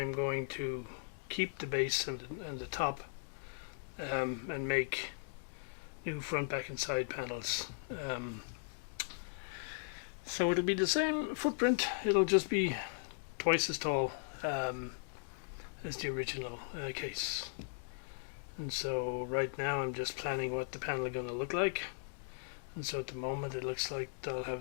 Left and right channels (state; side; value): silent; right; digital silence